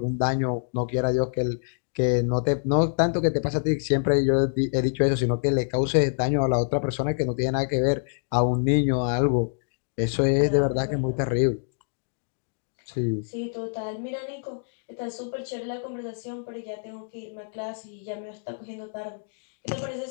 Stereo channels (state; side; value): silent; right; digital silence